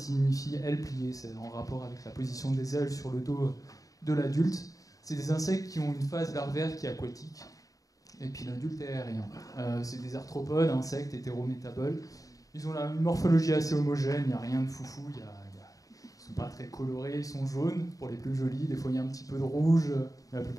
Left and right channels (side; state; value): right; late; 0.17 ms